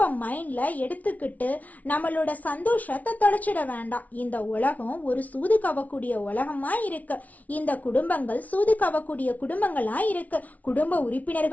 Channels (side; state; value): right; late; 0.072 ms